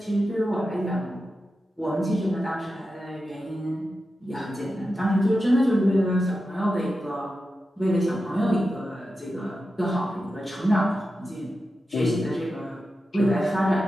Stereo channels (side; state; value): both; normal; correlation 0.91